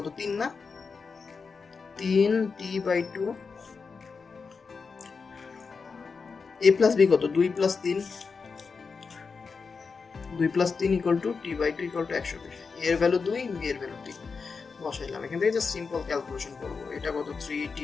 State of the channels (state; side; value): quieter; right; 5.0 dB